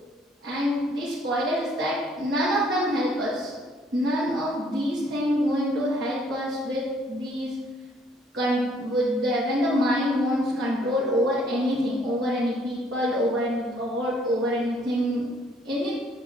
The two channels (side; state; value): both; normal; correlation 0.63